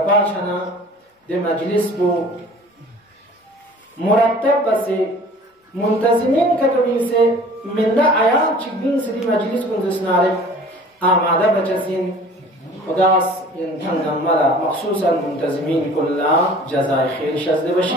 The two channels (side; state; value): both; normal; correlation 0.47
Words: دي مجلس بو مرتب بس منتظمين كتبين سي من دا آيان چگين سي دي مجلس كن دسنارك آماده بچسين خداس ينتنم ملا مخصوصا منتظمين كلها جزاء خير شزد بشي